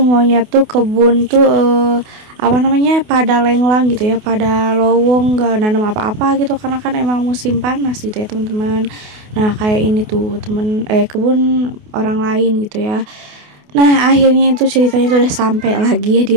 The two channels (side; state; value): left; late; 28 ms